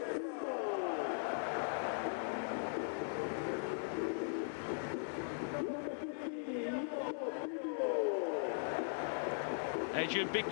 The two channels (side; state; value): right; silent; digital silence